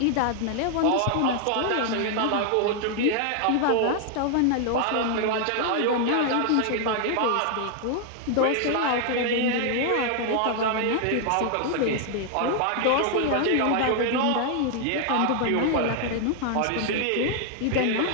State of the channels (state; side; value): different; both; correlation 0.00